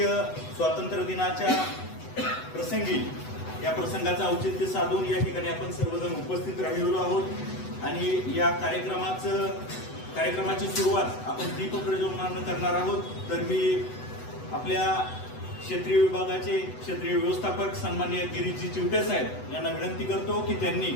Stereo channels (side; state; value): right; late; 8.0 ms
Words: स्वातंत्र्य दिनाच्या प्रसंगी या प्रसंगाचं औचित्य साधून या ठिकाणी आपण सर्वजण उपस्थित राहिलेलो आहोत आणि या कार्यक्रमाची सुरुवात आपण दीप प्रज्वलनानं करणार आहोत। तर मी आपल्या क्षेत्रीय विभागाचे क्षेत्रीय व्यवस्थापक सन्माननीय गिरीजी चिवटे साहेब यांना विनंती करतो की त्यांनी